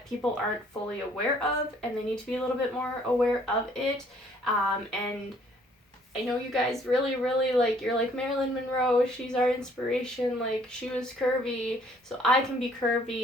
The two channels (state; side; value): normal; both; correlation 0.61